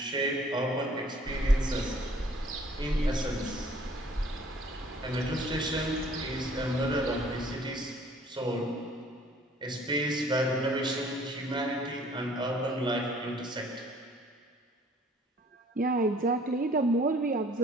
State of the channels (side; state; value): both; normal; correlation 0.56